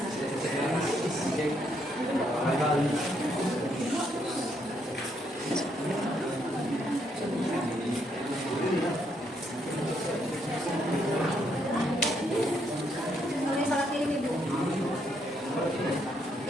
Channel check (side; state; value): both; normal; correlation 0.74